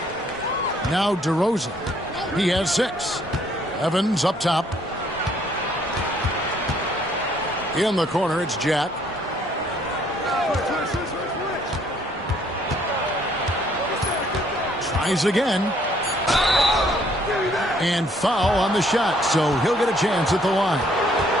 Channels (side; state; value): both; normal; correlation 0.64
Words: Now DeRozan. He has 6. Evans up top. In the corner, it's Jack. Tries again. And foul on the shot, so he'll get a chance at the line.